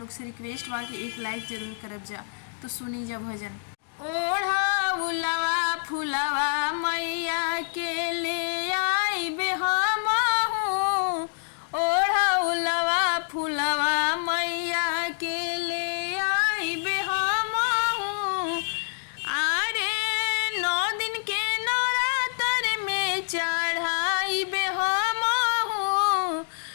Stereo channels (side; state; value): right; silent; digital silence